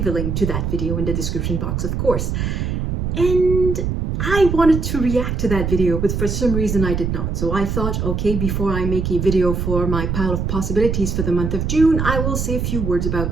a link to that video in the description box, of course. And I wanted to react to that video, but for some reason I did not. So I thought, okay, before I make a video for my pile of possibilities for the month of June, I will say a few words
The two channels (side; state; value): right; noise; rumble, 1 dB below the sound